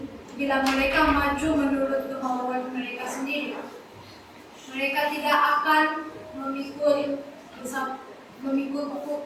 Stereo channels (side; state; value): both; identical; correlation 1.00